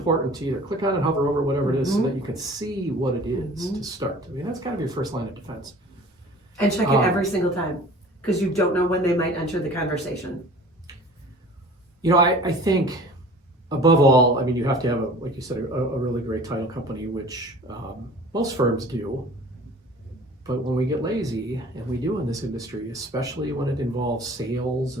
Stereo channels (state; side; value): normal; both; correlation 0.45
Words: to either click on it, hover over whatever it is, so that you can see what it is to start. I mean, that's got to be your first line of defense. And check it every single time, because you don't know when they might enter the conversation. I think above all, you have to have, like you said, a really great title company, which most firms do. But when we get lazy, and we do in this industry, especially when it involves sales